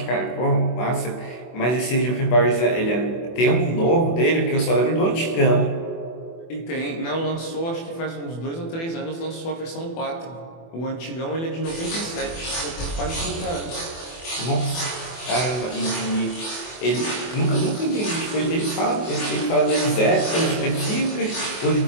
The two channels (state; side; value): late; right; 24 ms